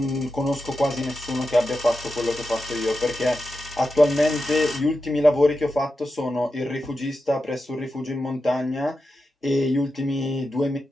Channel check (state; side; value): normal; both; correlation 0.90